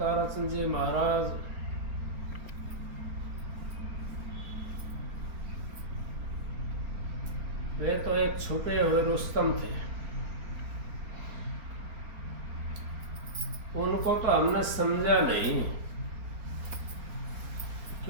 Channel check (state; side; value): late; left; 4.3 ms